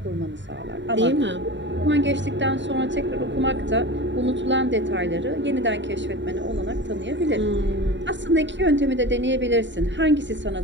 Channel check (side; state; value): left; late; 0.53 ms